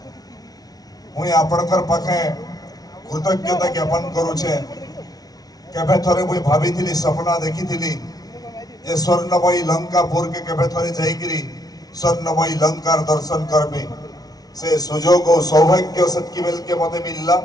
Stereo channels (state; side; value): late; right; 0.19 ms